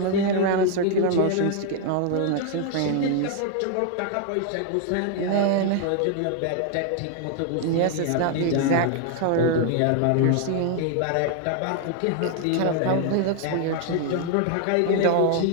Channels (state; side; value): different; both; correlation 0.00